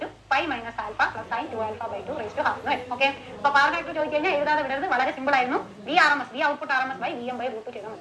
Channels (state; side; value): identical; both; correlation 1.00